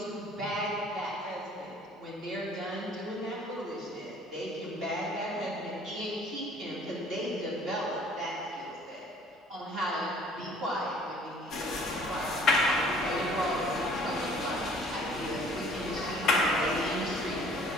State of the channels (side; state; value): both; normal; correlation 0.54